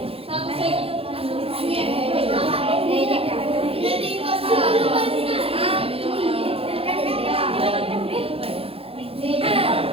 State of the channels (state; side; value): late; left; 0.27 ms